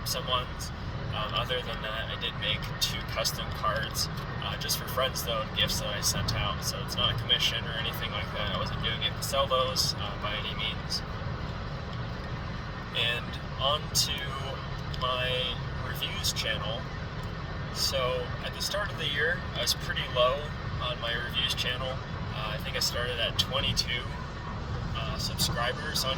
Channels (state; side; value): identical; both; correlation 1.00